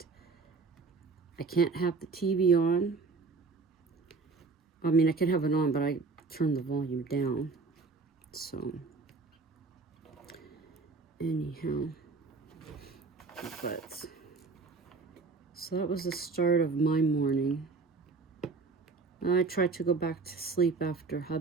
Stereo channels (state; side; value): quieter; left; 4.3 dB